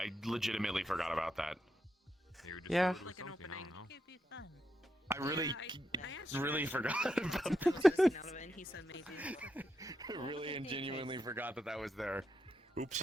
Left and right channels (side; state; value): both; normal; correlation 0.83